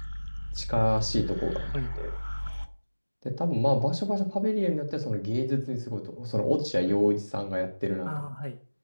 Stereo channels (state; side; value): inverted; both; correlation -1.00